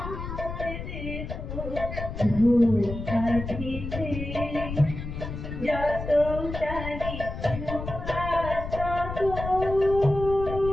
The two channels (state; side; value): noise; left; rumble, 7 dB below the sound